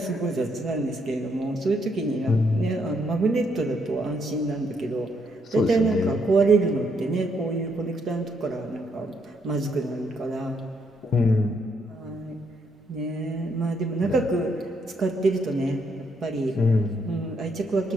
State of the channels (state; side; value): normal; both; correlation 0.74